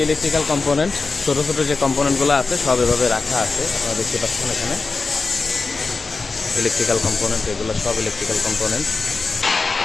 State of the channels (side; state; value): right; quieter; 4.1 dB